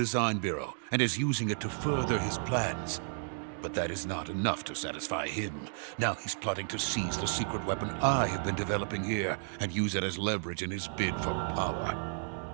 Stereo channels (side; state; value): left; silent; digital silence